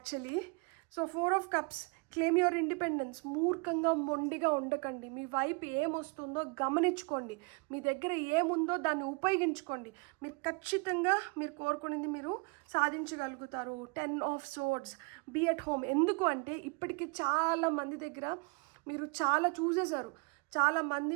So 4 of Cups, claim your independence. మూర్ఖంగా మొండిగా ఉండకండి. మీ వైపు ఏమొస్తుందో గమనించుకోండి. మీ దగ్గర ఏముందో దాన్ని ఉపయోగించుకోండి. మీరు ఖచ్చితంగా మీరు కోరుకునేది మీరు సాధించగలుగుతారు. 10 of Swords, be at home. ఎందుకు అంటే ఇప్పటికీ చాలా మంది దగ్గర మీరు చాలా చూసేశారు. చాలామంది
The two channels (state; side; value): quieter; left; 31.6 dB